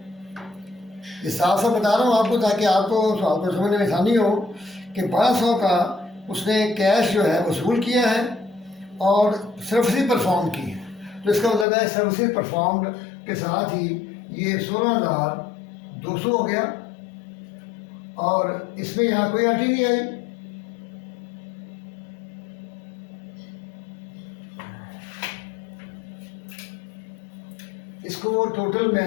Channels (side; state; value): right; drops out; at 11.7 s